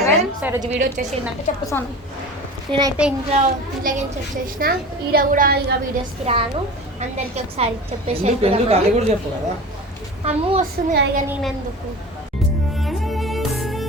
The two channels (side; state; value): both; normal; correlation 0.35